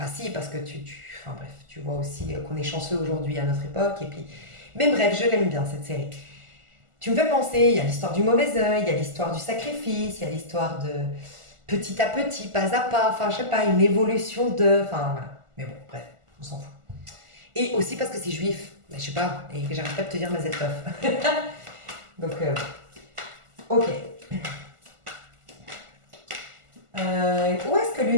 si, parce que enfin bref, tu vois aussi qu'on est chanceux aujourd'hui à notre époque et puis... Mais bref, je l'aime bien cette série. Tu me fais penser, il y a l'histoire du mauvais œil, il y a l'histoire du sacrifice, il y a l'histoire de petit à petit, pas à pas, enfin je sais pas, une évolution de... Enfin voilà. Mais bon, bref, on s'en fout. Et aussi parce que c'est juif, je sais pas, et que j'arrête pas de te dire Mazel Tov. Donc, ok. Où est-ce que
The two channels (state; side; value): late; left; 1.4 ms